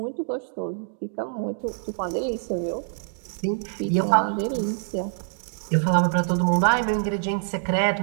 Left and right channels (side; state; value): left; silent; digital silence